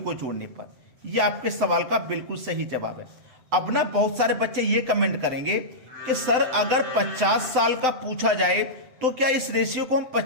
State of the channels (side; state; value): left; late; 7.8 ms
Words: जोड़ने पर। यह आपके सवाल का बिल्कुल सही जवाब है। अब ना बहुत सारे बच्चे ये कमेंट करेंगे कि सर अगर 50 साल का पूछा जाए तो क्या इस रेशियो को हम